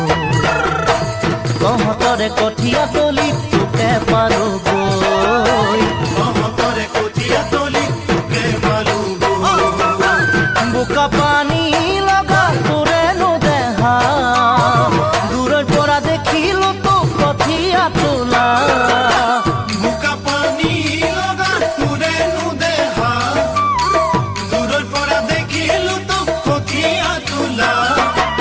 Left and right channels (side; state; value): both; identical; correlation 1.00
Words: তহঁতৰে কঠীয়া তলি তোকে পালোগৈ বোকা পানী লগা তোৰেনো দেহা দূৰৰ পৰা দেখিলো তোক কঠীয়া তোলা বোকা পানী লগা তোৰেনো দেহা দূৰৰ পৰা দেখিলো তোক কঠীয়া তোলা